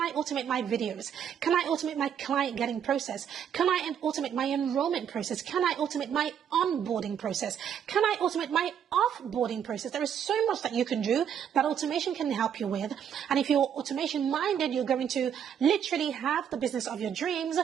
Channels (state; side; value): quieter; left; 8.6 dB